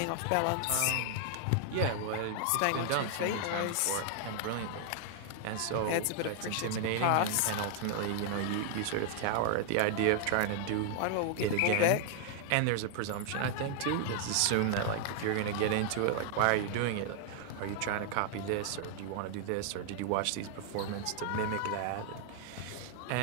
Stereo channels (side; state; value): both; different; correlation 0.00